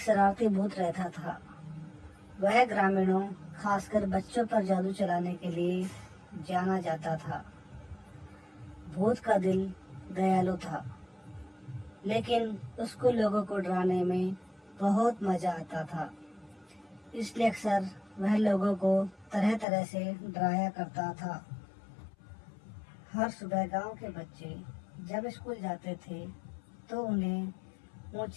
भूत रहता था। वह ग्रामीणों, खासकर बच्चों पर जादू चलाने के लिए जाना जाता था। भूत का दिल दयालु था, लेकिन उसको लोगों को डराने में बहुत मजा आता था। इसलिए अक्सर वह लोगों को तरह तरह से डराया करता था। हर सुबह गांव के बच्चे जब स्कूल जाते थे तो उन्हें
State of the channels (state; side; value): drops out; right; at 19.7 s